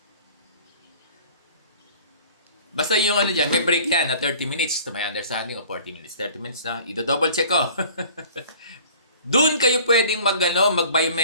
basta yung diyan, may break yan na 30 minutes to my understanding o 40 minutes. 30 minutes na, i-double check ko. Doon kayo pwedeng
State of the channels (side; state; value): both; inverted; correlation -0.48